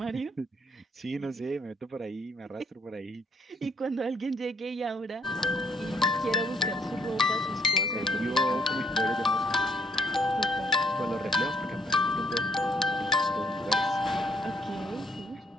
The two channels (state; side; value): normal; both; correlation 0.69